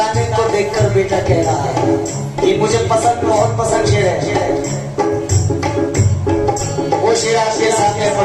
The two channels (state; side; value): identical; both; correlation 1.00